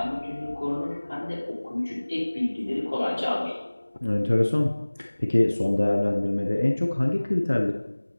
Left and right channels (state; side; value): inverted; both; correlation -1.00